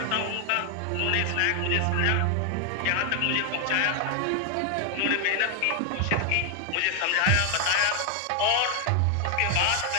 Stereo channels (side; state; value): both; different; correlation 0.00